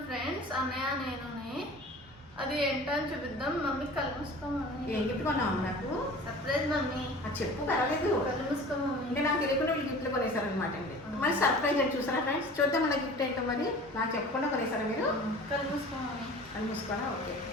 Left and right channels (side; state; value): both; normal; correlation 0.41